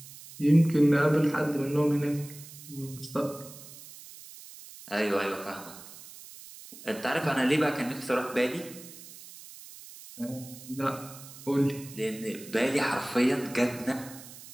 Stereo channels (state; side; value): noise; right; hiss, 17 dB below the sound